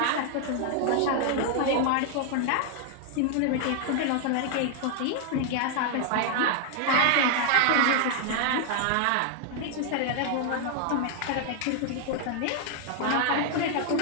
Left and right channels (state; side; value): different; both; correlation 0.00